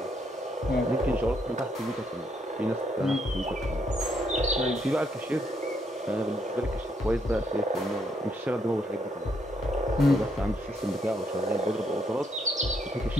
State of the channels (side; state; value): both; normal; correlation 0.74